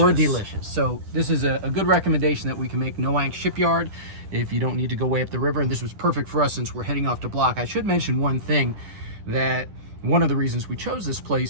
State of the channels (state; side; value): late; left; 10 ms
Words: delicious. So this is a good recommendation that we can make, Noank Shipyard, if you don't need to go way up the river. And this was perfect for us since we're heading off to Block. I should mention one thing, that one of the reasons we chose this